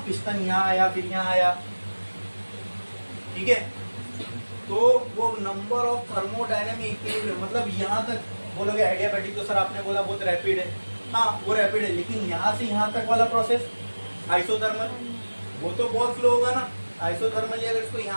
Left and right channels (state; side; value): inverted; both; correlation -1.00